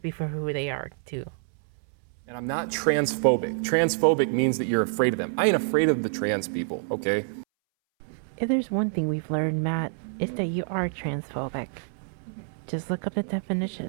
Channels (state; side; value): silent; left; 60 dB below the other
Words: for who they are, too. And I'm not transphobic. Transphobic means that you're afraid of them. I ain't afraid of the trans people, okay? If there's one thing we've learned, Matt, it's that you are transphobic. Just look up the